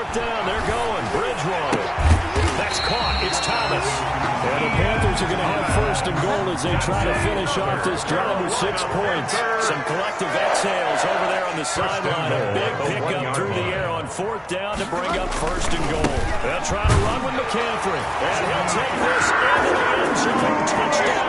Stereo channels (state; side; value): identical; both; correlation 1.00